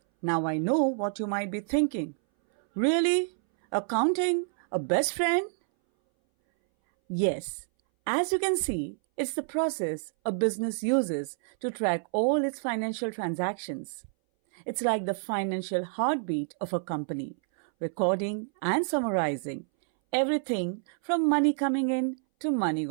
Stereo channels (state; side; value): silent; left; 59 dB below the other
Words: Now I know what you might be thinking. Really? Accounting? A best friend? Yes. As you can see, it's the process a business uses to track all its financial transactions. It's like the financial heartbeat of a company, recording and summarizing everything from money coming in to money